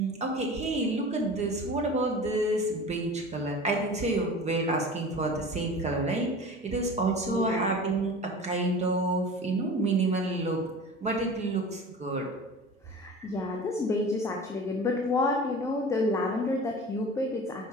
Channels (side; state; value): both; normal; correlation 0.37